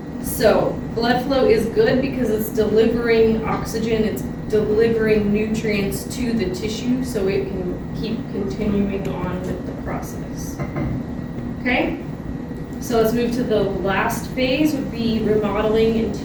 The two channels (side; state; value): both; identical; correlation 1.00